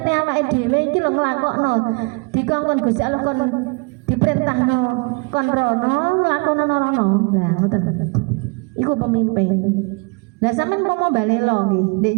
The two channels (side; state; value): left; quieter; 31.2 dB